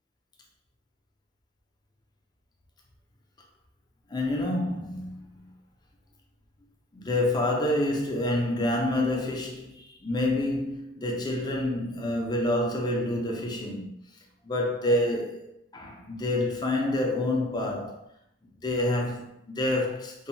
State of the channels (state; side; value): normal; both; correlation 0.50